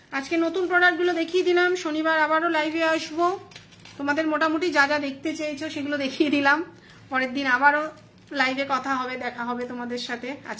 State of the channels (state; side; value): identical; both; correlation 1.00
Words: আজকে নতুন প্রোডাক্টগুলো দেখিয়ে দিলাম। শনিবার আবারও লাইভে আসবো, তোমাদের মোটামুটি যা যা দেখতে চেয়েছো সেগুলো দেখিয়ে দিলাম। পরের দিন আবারও লাইভে কথা হবে, দেখা হবে তোমাদের সাথে।